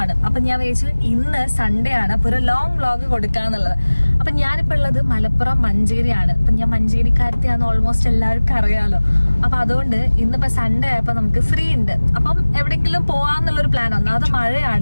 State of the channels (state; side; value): inverted; both; correlation -1.00